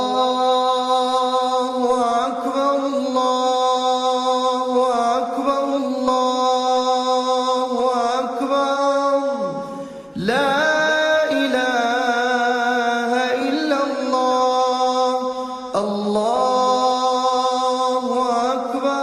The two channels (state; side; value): identical; both; correlation 1.00